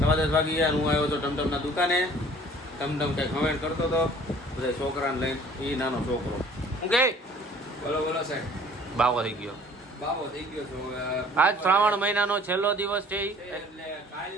વાગી ગયા. હું આવ્યો તો ટમટમના દુકાને. ટમટમ કંઈ કમેન્ટ કરતો હતો બધા છોકરાને લઈને. એ નાનો છોકરો હું કે બોલો બોલો સાહેબ. બાવો થઈ ગયો. બાબો થઈ ગયો છો. આજ શ્રાવણ મહિનાનો છેલ્લો દિવસ છે. એટલે કાલ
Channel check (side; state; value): both; normal; correlation 0.52